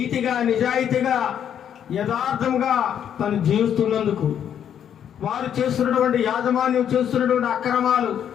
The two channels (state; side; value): quieter; right; 9.2 dB